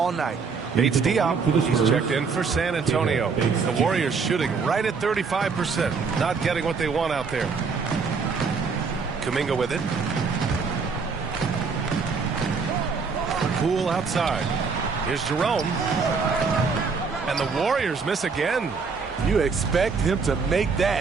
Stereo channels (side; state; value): left; quieter; 5.1 dB